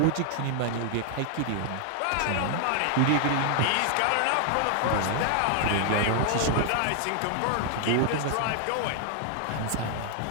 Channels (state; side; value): different; both; correlation 0.00